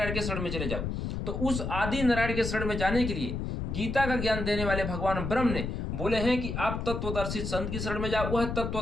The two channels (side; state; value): left; noise; rumble, 3 dB below the sound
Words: के शरण में चले जाओ। तो उस आदि नारायण के शरण में जाने के लिए गीता का ज्ञान देने वाले भगवान ब्रह्म ने बोले हैं कि आप तत्वदर्शी संत की शरण में जाओ। वह